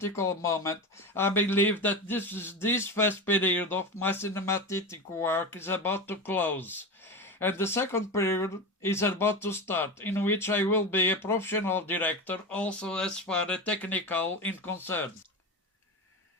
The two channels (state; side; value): normal; both; correlation 0.23